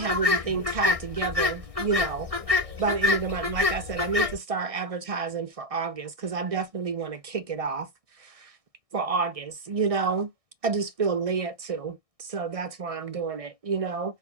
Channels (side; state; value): left; late; 1.6 ms